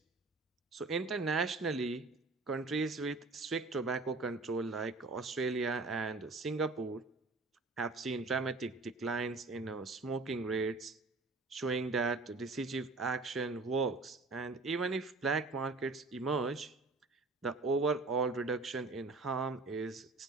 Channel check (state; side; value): quieter; left; 3.6 dB